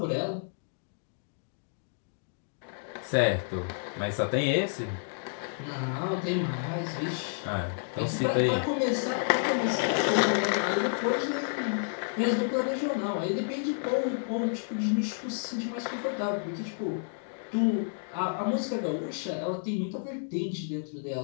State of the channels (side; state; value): right; silent; digital silence